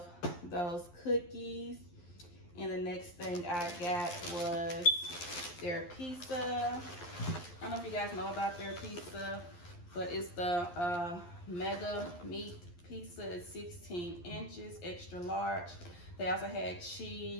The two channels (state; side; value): late; right; 11 ms